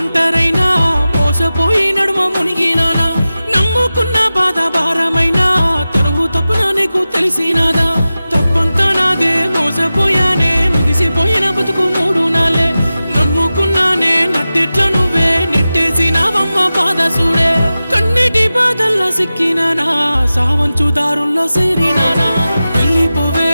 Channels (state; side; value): inverted; both; correlation -0.95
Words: మోసపోయి నడుమ మునిగినానా నమ్ముకున్న బాధ భారమైనా తనువు తప్పున నీకు తెలిసినాదా తప్పంతా నాదే మోసపోయానే ముగిసిపోయిన బతుకు మూడు నాలే నమ్ముకున్నానే నట్టెట్ల నువ్వే నెట్టేసినావమ్మ బాధ చూడే కన్నిటి బాధల్లా సిక్కినానా సావంచు దారుల్లో సేరినానా వెళ్ళిపోవే